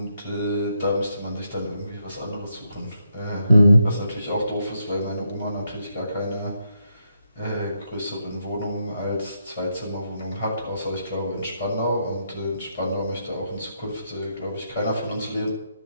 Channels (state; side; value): inverted; both; correlation -0.80